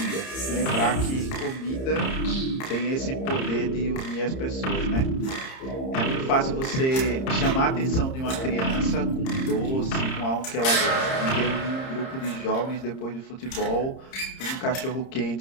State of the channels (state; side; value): late; right; 30 ms